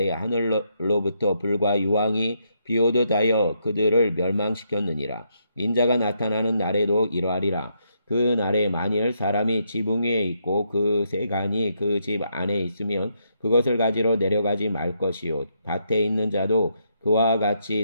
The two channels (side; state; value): both; inverted; correlation -0.77